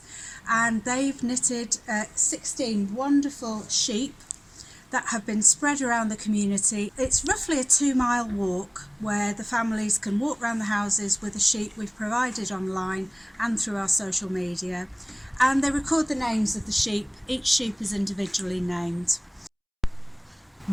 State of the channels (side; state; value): both; identical; correlation 1.00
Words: and they've knitted 16 wonderful sheep that have been spread around the community. It's roughly a 2-mile walk where the families can walk around the houses with a sheet we've provided online and through our social media, and they record the names of the sheep. Each sheep is individually named.